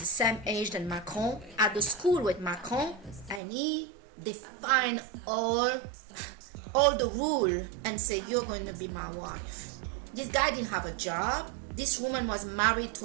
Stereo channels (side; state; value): left; drops out; at 3.4 s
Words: same age than Macron, at the school with Macron, and he defined all the rule and say, you're going to be my wife. This guy didn't have a job. This woman was married